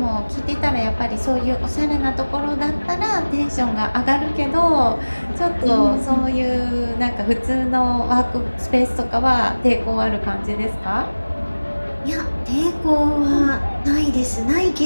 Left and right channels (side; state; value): both; inverted; correlation -1.00